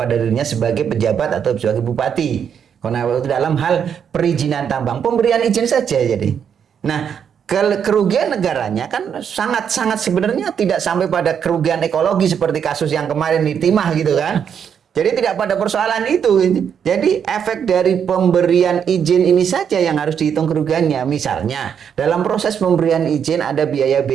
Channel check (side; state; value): left; quieter; 7.8 dB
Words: dirinya sebagai pejabat atau sebagai bupati. Karena itu dalam hal perizinan tambang, pemberian izin saja jadi. Nah, kerugian negaranya kan sangat-sangat sebenarnya tidak sampai pada kerugian ekologi seperti kasus yang kemarin di Timah gitu kan. Jadi tidak pada persoalan itu. Jadi efek dari pemberian izin ini saja yang harus dihitung kerugiannya. Misalnya dalam proses pemberian izin ada